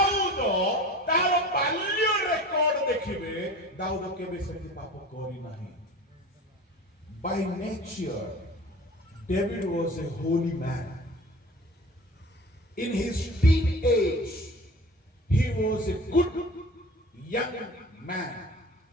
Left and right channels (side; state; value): both; normal; correlation 0.39